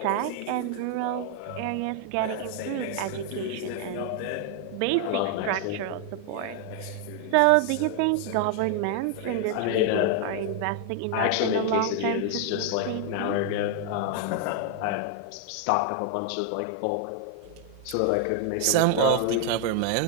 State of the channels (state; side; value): different; both; correlation 0.00